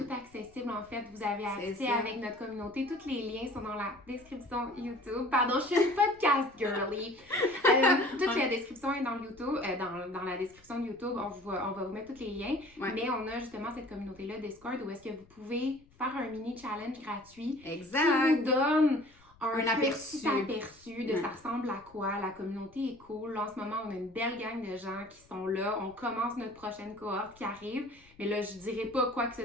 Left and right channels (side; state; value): left; noise; rumble, 28 dB below the sound